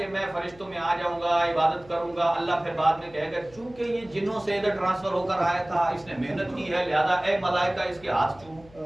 میں فرشتوں میں آ جاؤں گا عبادت کروں گا. اللہ پھر بعد میں کہے گا چونکہ یہ جنوں سے ادھر ٹرانسفر ہو کر آیا تھا اس نے محنت کی ہے لہذا اے ملائکہ اس کے ہاتھ چومو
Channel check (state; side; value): noise; left; hum, 24 dB below the sound